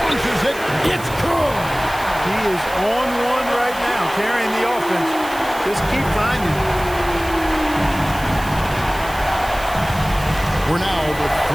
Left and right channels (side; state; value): right; noise; hiss, 16 dB below the sound